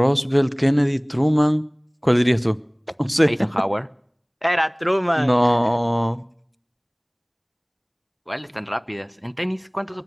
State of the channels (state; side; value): identical; both; correlation 1.00